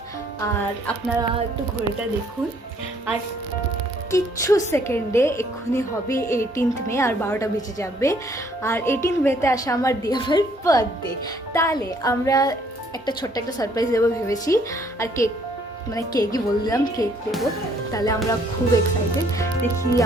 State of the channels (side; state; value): both; normal; correlation 0.64